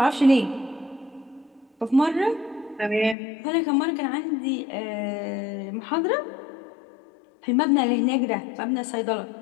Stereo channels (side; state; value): right; drops out; at 3.2 s